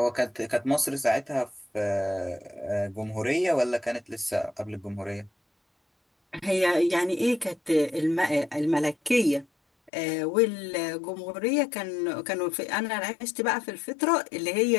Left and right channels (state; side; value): drops out; right; at 9.9 s